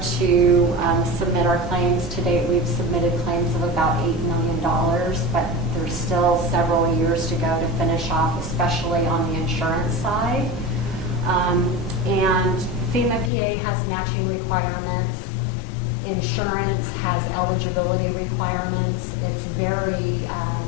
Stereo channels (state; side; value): drops out; right; at 13.3 s